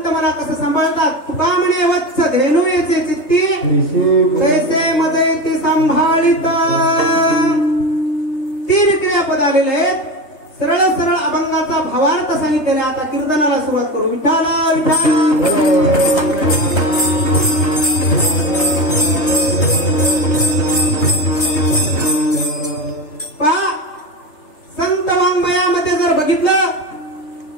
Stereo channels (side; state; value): right; late; 3.3 ms